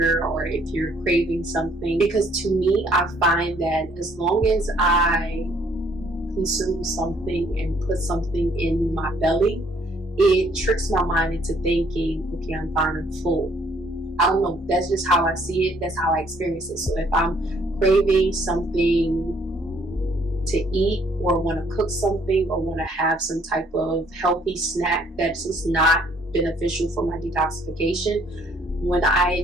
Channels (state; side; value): normal; both; correlation 0.64